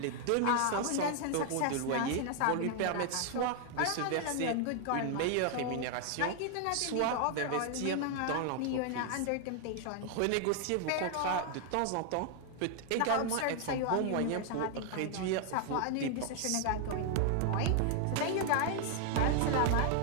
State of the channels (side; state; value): both; different; correlation 0.00